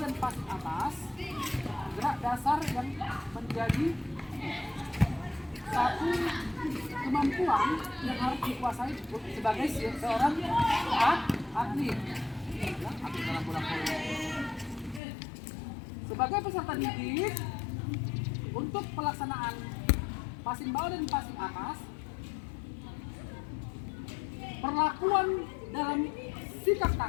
passing atas, gerak dasar yang menjadi satu kemampuan yang harus dikuasai sebagai seorang atlet, ya, atlet dalam bola voli. Sebagai peserta didik, untuk pelaksanaan passing bawah dan passing atas, perlakuan dalam sikap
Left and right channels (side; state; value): right; drops out; at 15.0 s